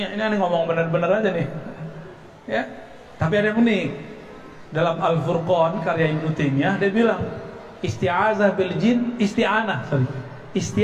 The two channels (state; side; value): identical; both; correlation 1.00